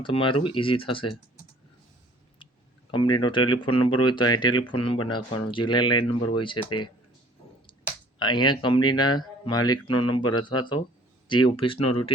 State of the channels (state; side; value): normal; both; correlation 0.54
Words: ઇઝી થશે. કંપનીનો ટેલિફોન નંબર હોય તો અહીં ટેલિફોન નંબર નાખવાનો, જે લેન્ડલાઇન નંબર હોય છે તે. અહીંયા કંપનીના માલિકનો નંબર અથવા તો જે ઓફિસનો